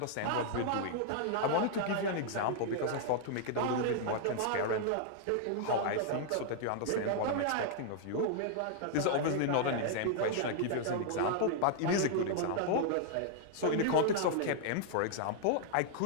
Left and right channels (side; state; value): both; different; correlation -0.01